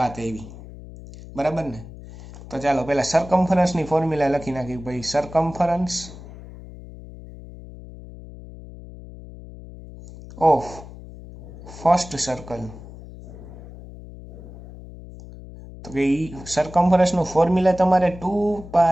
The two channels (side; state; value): left; noise; hum, 16 dB below the sound